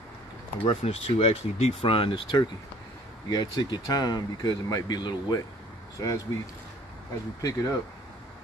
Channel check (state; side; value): normal; both; correlation 0.55